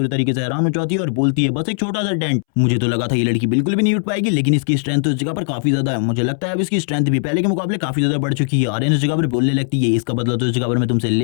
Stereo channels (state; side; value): silent; right; 67 dB below the other